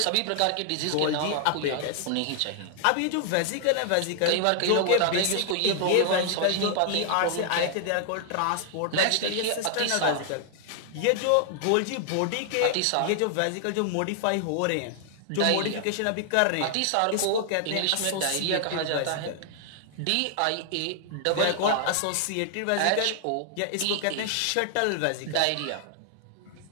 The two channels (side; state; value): both; different; correlation 0.00